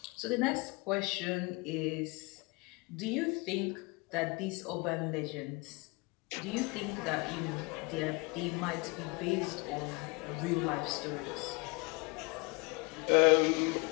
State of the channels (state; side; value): quieter; right; 28.0 dB